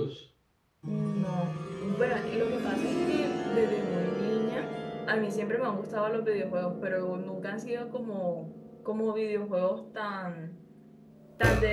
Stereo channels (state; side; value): identical; both; correlation 1.00